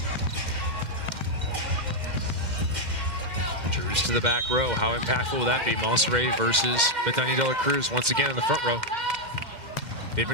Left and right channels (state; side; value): late; left; 2.1 ms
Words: Drews to the back row. How impactful will that be? Monserrat versus Bethany de la Cruz once again in the front row. They've